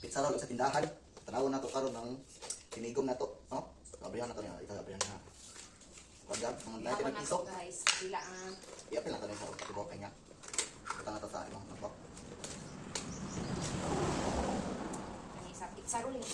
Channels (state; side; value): identical; both; correlation 1.00